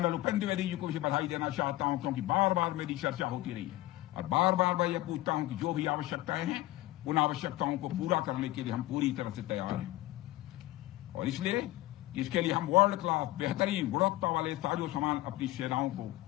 Upendra Dwivedi ji को भी बधाई देना चाहता हूं, क्योंकि बार बार मेरी चर्चा होती रही है और बार बार मैं यह पूछता हूं कि जो भी आवश्यकताएं हैं उन आवश्यकताओं को पूरा करने के लिए हम पूरी तरह से तैयार हैं। और इसलिए इसके लिए हम वर्ल्ड क्लास बेहतरीन गुणवत्ता वाले साजो सामान अपनी सेनाओं को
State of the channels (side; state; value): right; quieter; 17.2 dB